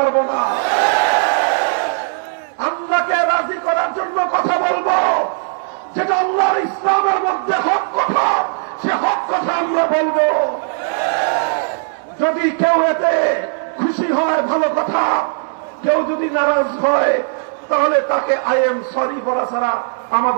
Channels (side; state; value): left; silent; 60 dB below the other